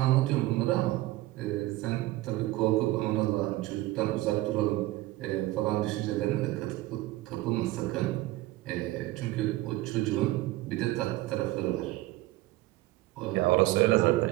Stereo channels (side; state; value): left; quieter; 17.7 dB